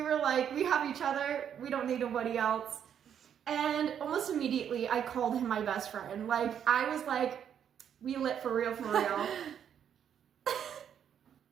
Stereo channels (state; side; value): quieter; left; 8.8 dB